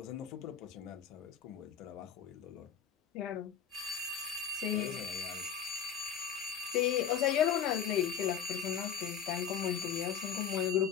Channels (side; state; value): right; quieter; 7.9 dB